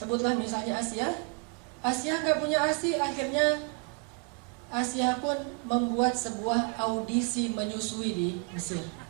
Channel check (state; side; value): quieter; left; 31.1 dB